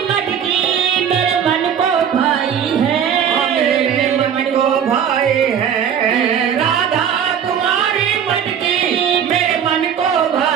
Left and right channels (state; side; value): quieter; left; 8.3 dB